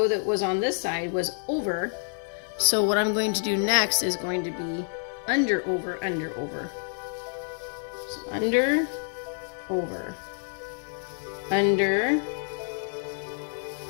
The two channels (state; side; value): silent; right; 59 dB below the other